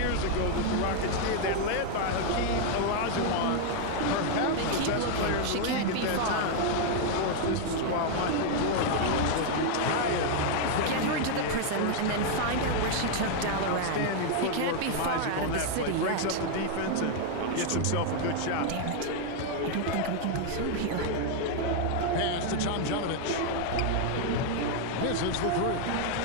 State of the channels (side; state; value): both; different; correlation 0.00